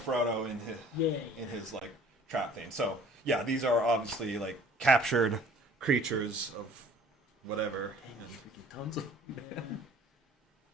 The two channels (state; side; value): normal; both; correlation 0.52